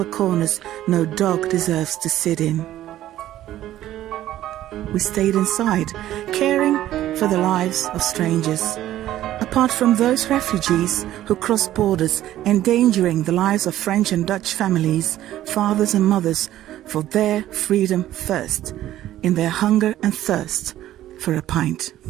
corners no dog deserves to sit in. We stayed inside, caring for the lives of strangers. Apart from those refugees who crossed borders, endangering the lives of French and Dutch families, fathers and mothers, for their freedom first, in their hunger and thirst for a pint.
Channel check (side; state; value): left; quieter; 13.4 dB